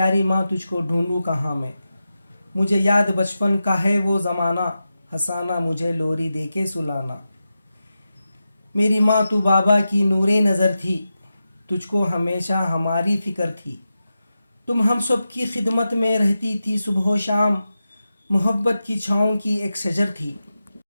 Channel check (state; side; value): inverted; both; correlation -0.91